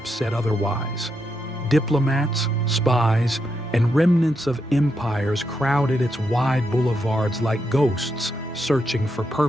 said otherwise. Diplomats, spies, and remnants of empires crowded its wide boulevards like ghosts searching for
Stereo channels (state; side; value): normal; both; correlation 0.82